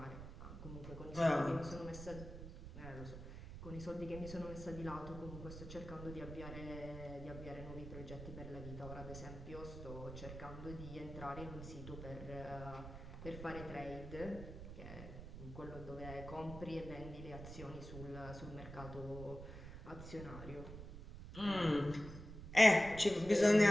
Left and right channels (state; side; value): noise; right; rumble, 11 dB below the sound